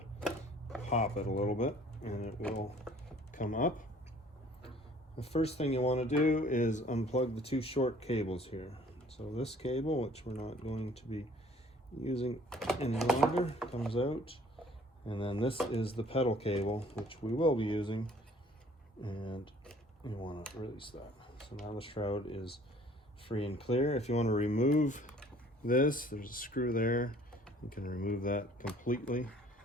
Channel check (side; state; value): both; normal; correlation 0.55